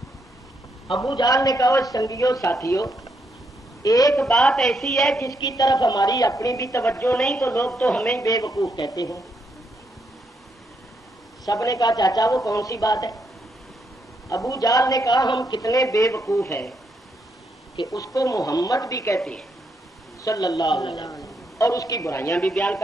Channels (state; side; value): normal; both; correlation 0.78